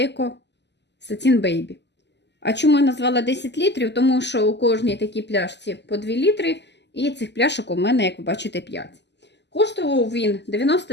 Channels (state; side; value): late; right; 0.50 ms